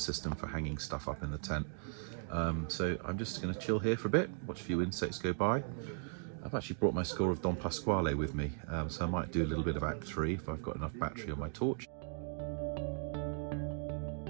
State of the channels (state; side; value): silent; left; digital silence